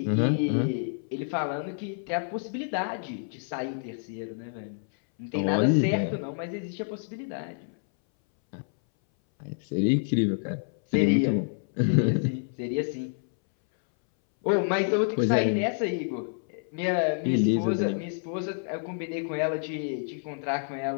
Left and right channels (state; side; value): silent; right; 59 dB below the other